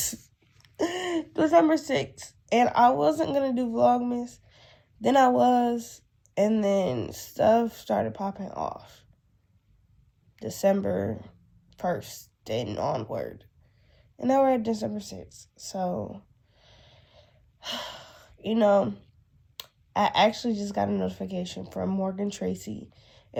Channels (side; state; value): both; identical; correlation 1.00